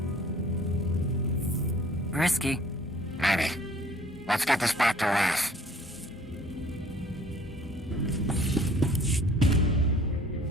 Risky. Maybe. Let's get this back to Wrath.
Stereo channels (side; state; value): both; normal; correlation 0.54